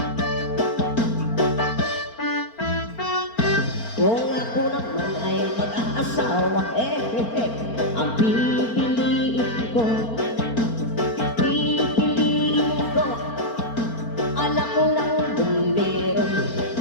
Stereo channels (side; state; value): right; late; 4.4 ms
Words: Kung ako naman ay mag-aasawa, ang pipiliin ko, anak ko ng bumbero,